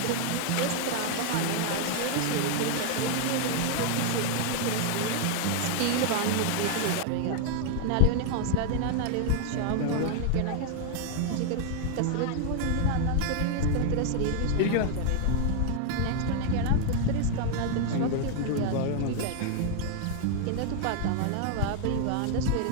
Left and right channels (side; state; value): both; different; correlation 0.00